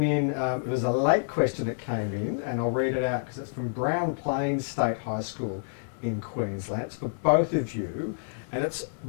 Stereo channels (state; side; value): silent; right; digital silence